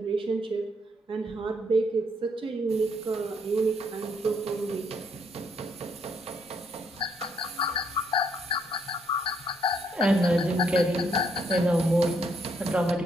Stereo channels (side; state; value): both; normal; correlation 0.71